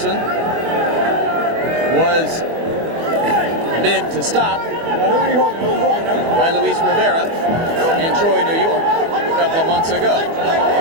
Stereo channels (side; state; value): left; late; 24 ms